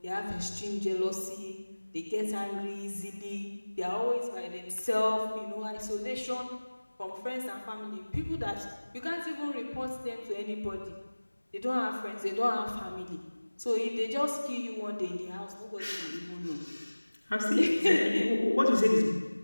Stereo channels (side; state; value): both; inverted; correlation -1.00